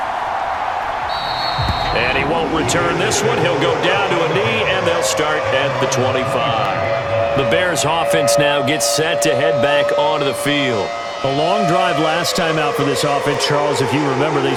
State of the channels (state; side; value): identical; both; correlation 1.00